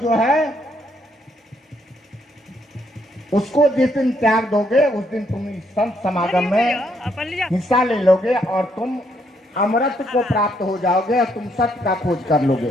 है उसको जिस दिन त्याग दोगे उस दिन तुम इस संत समागम में हिस्सा ले लोगे और तुम अमृत को प्राप्त हो जाओगे और तुम सत्य का खोज कर लोगे।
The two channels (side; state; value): both; normal; correlation 0.72